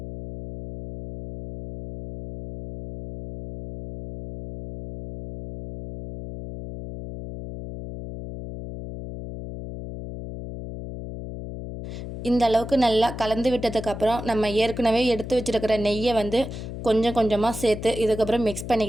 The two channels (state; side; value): noise; left; hum, 9 dB below the sound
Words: இந்த அளவுக்கு நல்லா கலந்து விட்டதுக்கப்புறம் நம்ம ஏற்கனவே எடுத்து வச்சுருக்கிற நெய்யை கொஞ்சம் கொஞ்சமாக சேர்த்து இதுக்கப்புறம் மிக்ஸ்